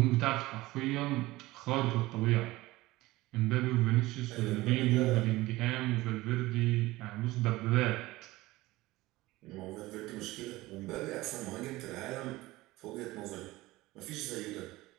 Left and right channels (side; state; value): left; quieter; 19.0 dB